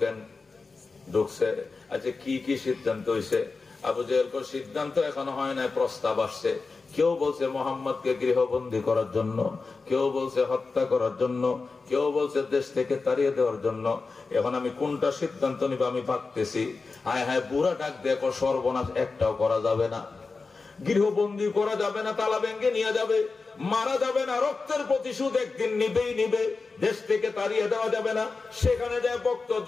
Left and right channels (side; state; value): right; quieter; 4.2 dB